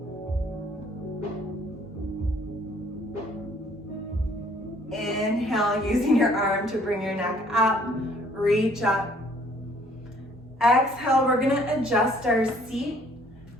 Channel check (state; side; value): normal; both; correlation 0.60